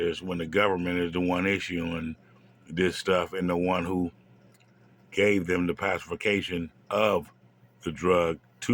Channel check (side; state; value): both; identical; correlation 1.00